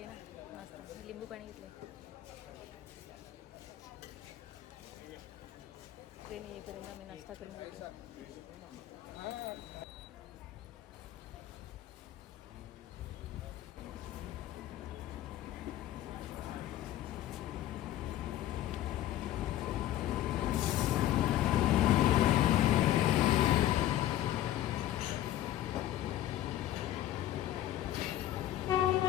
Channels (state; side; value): quieter; right; 13.2 dB